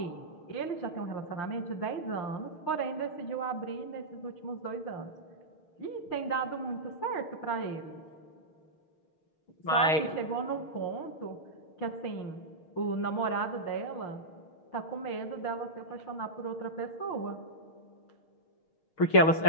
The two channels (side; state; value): right; late; 6.5 ms